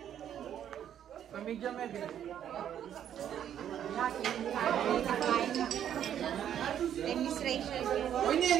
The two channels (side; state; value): left; quieter; 9.9 dB